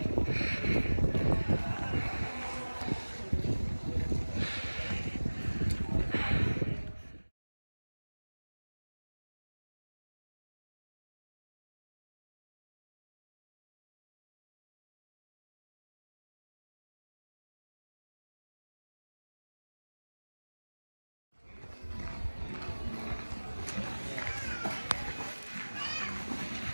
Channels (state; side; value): inverted; both; correlation -1.00